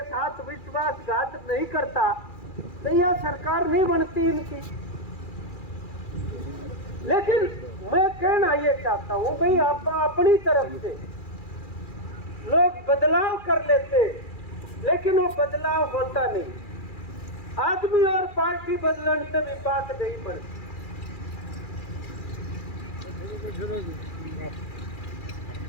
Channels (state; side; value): late; right; 2.4 ms